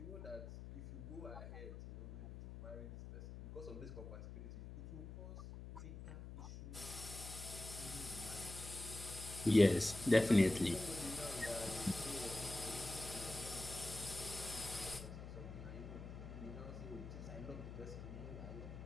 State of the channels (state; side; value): noise; left; hum, 10 dB below the sound